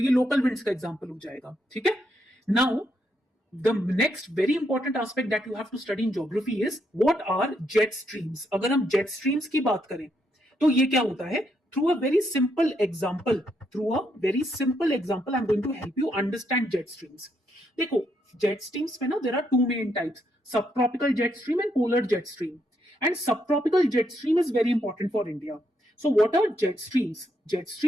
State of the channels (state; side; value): normal; both; correlation 0.77